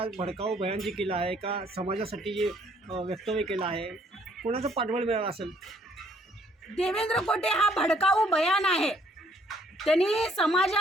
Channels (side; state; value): both; normal; correlation 0.65